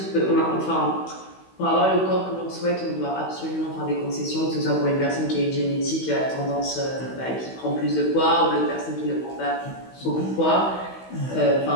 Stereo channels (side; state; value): right; late; 16 ms